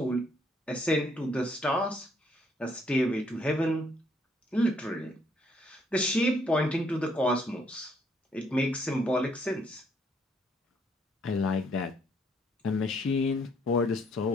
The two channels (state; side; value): normal; both; correlation 0.68